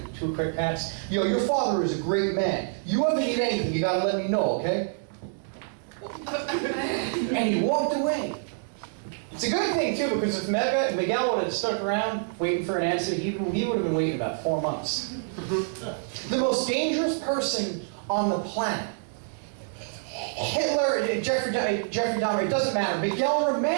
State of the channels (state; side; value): silent; left; digital silence